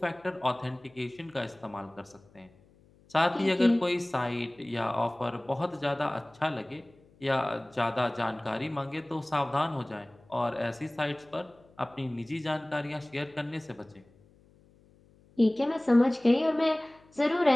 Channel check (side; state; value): left; noise; hum, 29 dB below the sound